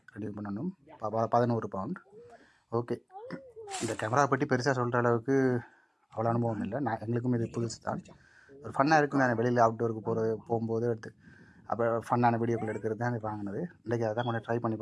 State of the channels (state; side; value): identical; both; correlation 1.00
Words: ரெனியூ பண்ணணும். 11 பவுண்ட். ஓகே, இந்த கேமரா பற்றி பெருசாக சொல்கிற அளவுக்கு அவ்வளோ அனுபவம் இல்லை. எங்களுக்கும் இது புதுசு தான். ஒரு ஃபன்னாக இருக்கும். நான் வெளியில் அவுட்டோருக்கு போகும்போது எடுத்து அப்போ ஃபன்னான வீடியோக்கள் எடுக்கிறது தான் வாங்கினது. இன்றைக்கி அதை தான் கொஞ்சம் ட்ரை பண்ணி